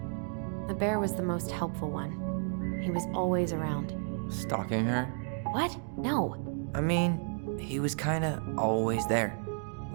The bear was the most helpful one. He was always around. Stalking her? What? No. I mean, he was kinda always there,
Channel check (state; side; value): silent; left; 56 dB below the other